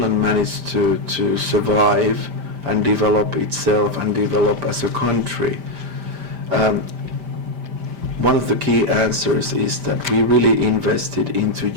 managed to survive and develop itself and develop as a country, one of the key answers is that we really invested into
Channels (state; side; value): late; left; 5.1 ms